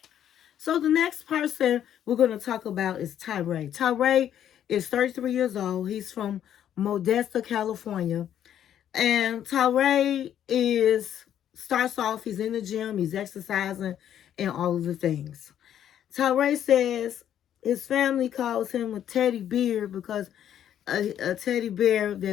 So the next person we're going to talk about is Tyreek. Tyreek is 33 years old. He's from Modesto, California. And Tyreek starts off, he's in the gym, he's exercising, and all of the things. Tyreek says his family calls him a teddy bear because a teddy bear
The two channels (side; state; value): right; quieter; 10.3 dB